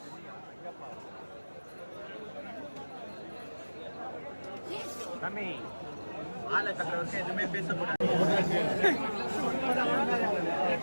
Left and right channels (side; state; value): both; inverted; correlation -1.00